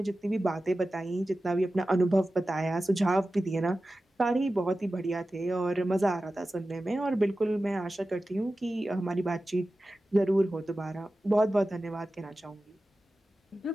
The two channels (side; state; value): both; normal; correlation 0.94